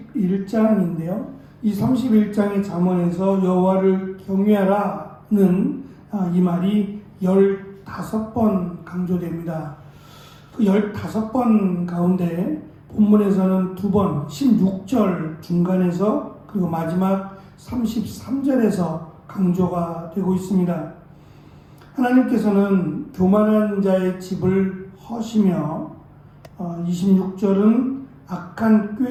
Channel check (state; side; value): identical; both; correlation 1.00